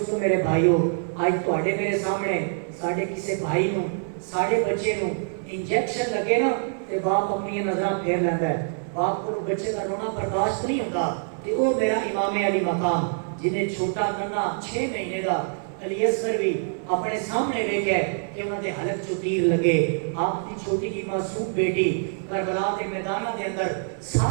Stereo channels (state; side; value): silent; left; digital silence